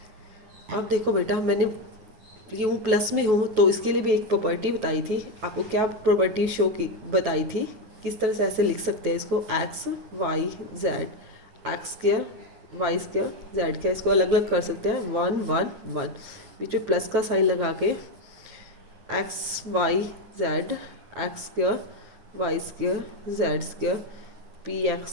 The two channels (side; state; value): left; late; 9.3 ms